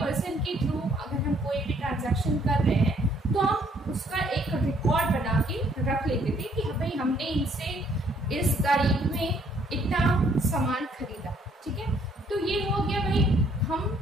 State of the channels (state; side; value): normal; both; correlation 0.65